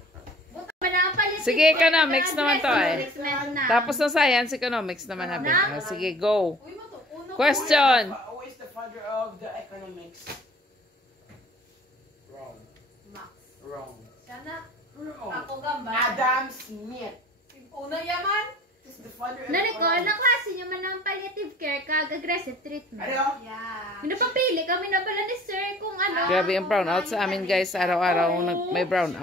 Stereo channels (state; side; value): normal; both; correlation 0.50